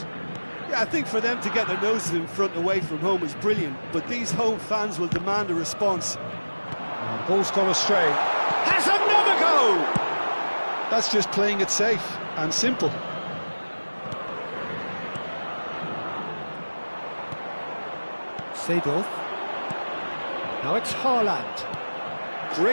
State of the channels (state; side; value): inverted; both; correlation -1.00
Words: Yeah, I think for them to get their noses in front away from home is brilliant, but these home fans will demand a response. Ball's gone astray. Has another go! That's just playing it safe and simple. Seedorf. Now it's Haaland.